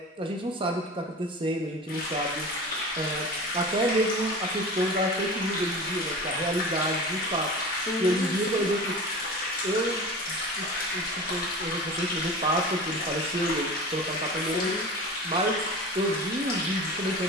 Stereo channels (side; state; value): both; normal; correlation 0.34